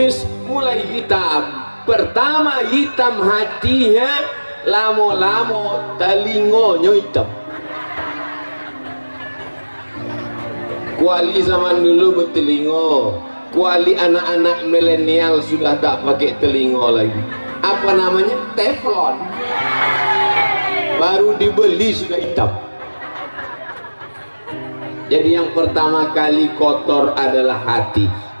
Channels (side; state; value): both; inverted; correlation -1.00